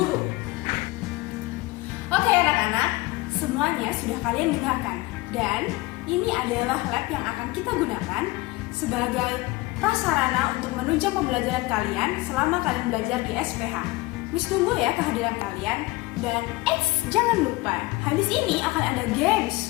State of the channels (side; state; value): right; quieter; 21.3 dB